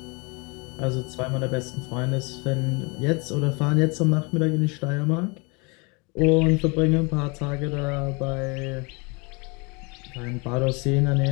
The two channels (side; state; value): right; quieter; 29.9 dB